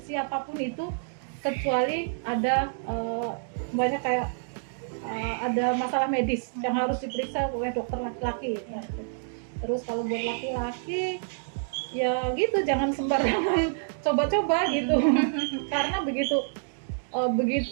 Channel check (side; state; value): left; silent; digital silence